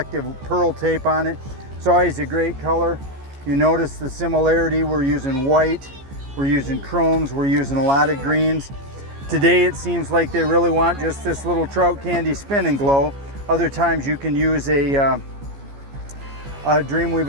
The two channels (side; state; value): left; late; 14 ms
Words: pearl tape on it. It's always a great color. You notice the similarity. We're using white, we're using chromes, we're using a lot of greens. Today it seems like they really want just this little trout candy spin and glow. Other times you can use a